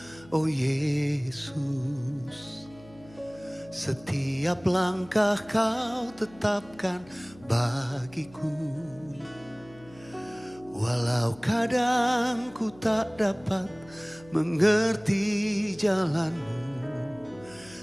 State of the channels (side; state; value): left; noise; hum, 23 dB below the sound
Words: oh Yesus. Setiap langkah Kau tetapkan bagiku. Walau kadang ku tak dapat mengerti jalan-Mu,